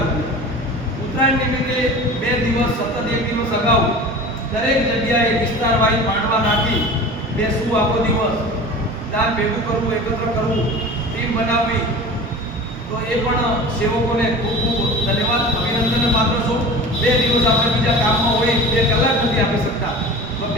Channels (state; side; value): normal; both; correlation 0.37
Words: ઉત્તરાયણ નિમિત્તે 2 દિવસ સતત 1 દિવસ અગાઉ દરેક જગ્યાએ વિસ્તાર વાઇઝ માંડવા નાખી બેસવું આખો દિવસ દાન ભેગું કરવું એકત્ર કરવું ટીમ બનાવવી તો એ પણ સેવકોને ખૂબ ખૂબ ધન્યવાદ અભિનંદનને પાત્ર છું 2 દિવસ આપણે બીજા કામમાં હોય 2 કલાક નથી આપી શકતા તો